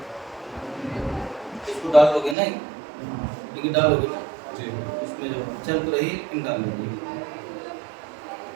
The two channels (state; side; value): drops out; left; at 2.4 s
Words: डालोगे नहीं, लेकिन डालोगे ना जी, उसमें जो चल तो रही लेकिन डाल लीजिए।